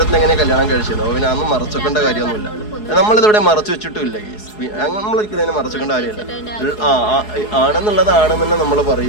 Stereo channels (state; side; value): late; right; 4.7 ms